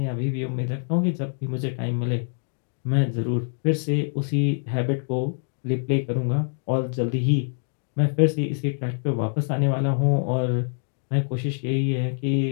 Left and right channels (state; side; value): silent; right; digital silence